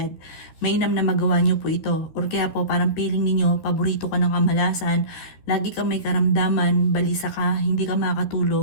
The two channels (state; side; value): late; right; 13 ms